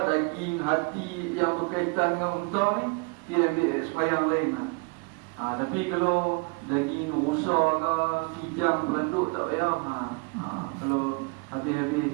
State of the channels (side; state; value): left; quieter; 32.4 dB